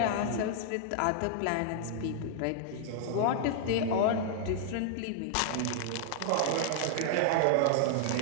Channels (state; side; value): different; both; correlation -0.01